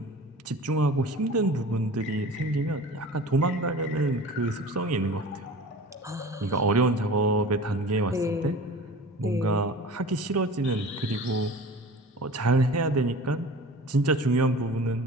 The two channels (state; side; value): normal; both; correlation 0.39